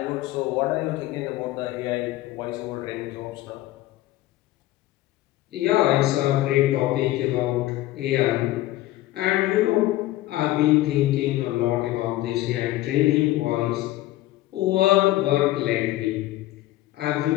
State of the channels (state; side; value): quieter; right; 16.0 dB